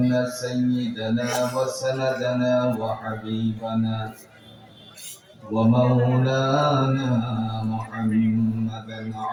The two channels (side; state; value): both; identical; correlation 1.00